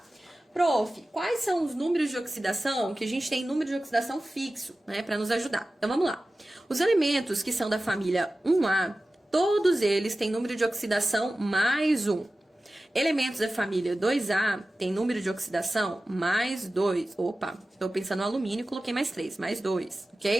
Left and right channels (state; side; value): normal; both; correlation 0.96